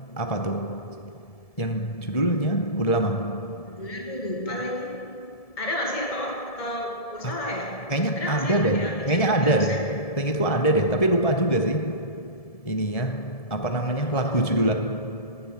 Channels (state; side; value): late; right; 1.7 ms